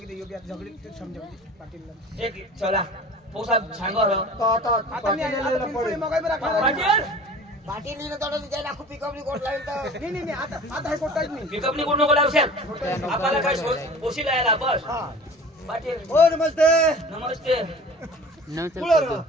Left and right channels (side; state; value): both; normal; correlation 0.42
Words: योग्य झगडी तू समजा पाटीलला एक चला पोसा सांगो रो आता मी आता पिंपळी मगाई बरं खाणार. पाटील पाटील तोडून जायला खूप पिकअपली कोट लागेल तर नाही आता हे कोटाच नाही पिकअप नि कोण नको लावशाल आपल्याला काय पोशी लायला बस पाटील हो नमस्ते नमस्ते उलट